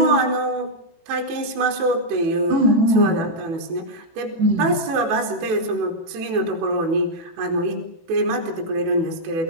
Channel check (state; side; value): late; left; 18 ms